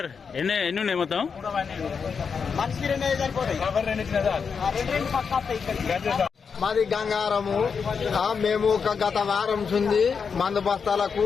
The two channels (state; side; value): quieter; right; 5.9 dB